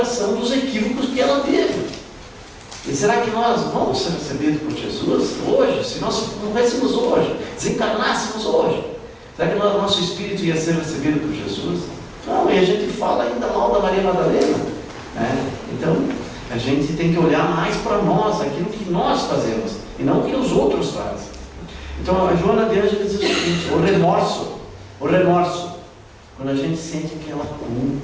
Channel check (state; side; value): identical; both; correlation 1.00